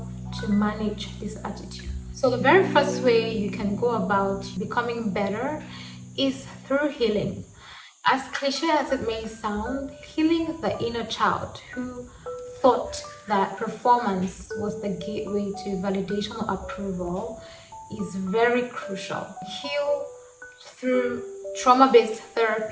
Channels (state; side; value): identical; both; correlation 1.00